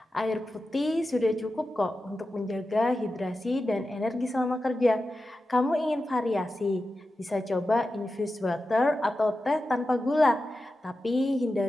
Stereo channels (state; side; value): normal; both; correlation 0.92